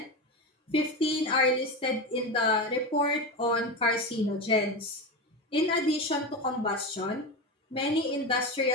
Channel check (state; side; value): normal; both; correlation 0.20